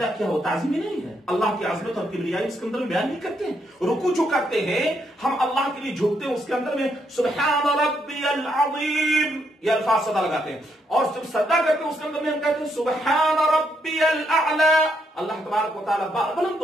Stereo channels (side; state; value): both; normal; correlation 0.76